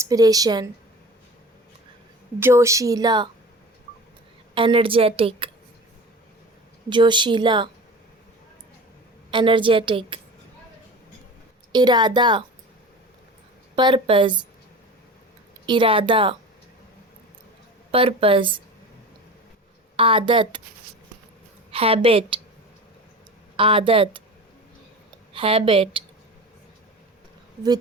जोशीला, एनर्जेटिक, जोशीला, एनर्जेटिक, इरादा, पर्पज़, इरादा, पर्पज़, आदत, हैबिट, आदत, हैबिट,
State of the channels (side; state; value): both; normal; correlation 0.34